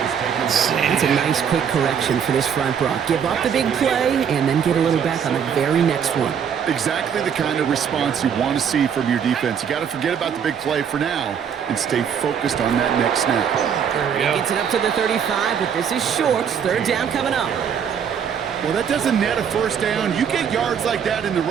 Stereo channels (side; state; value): left; quieter; 7.8 dB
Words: It's a nice quick correction for this front, Brock. Give up the big play and then get a little back on the very next one. Exactly the kind of response you want to see from your defense. You got to forget about the big play for now and stay focused on that next snap. There we go. Gets it up to the 35, but this is short. Third down coming up. Well, that doesn't net a first down. You get yards like that in the